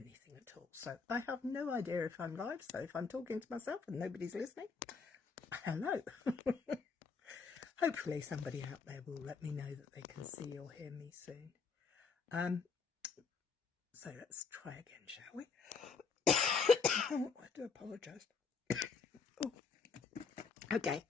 at all. So I have no idea if I'm live. So if I'm talking to myself and nobody's listening, hello. Hopefully somebody out there will let me know that they can see or hear me soon. So let's try again, shall we? I do apologise. Oh. Okay,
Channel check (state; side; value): quieter; right; 5.2 dB